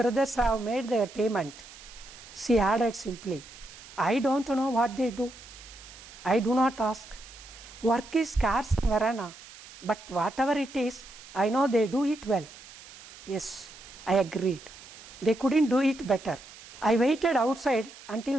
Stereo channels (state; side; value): noise; right; hiss, 18 dB below the sound